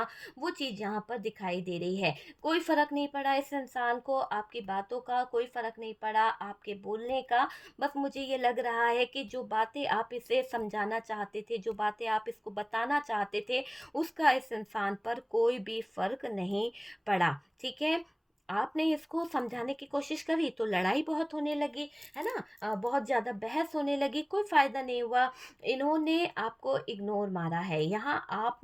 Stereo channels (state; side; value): identical; both; correlation 1.00